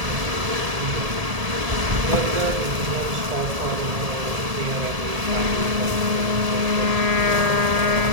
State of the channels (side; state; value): left; late; 1.8 ms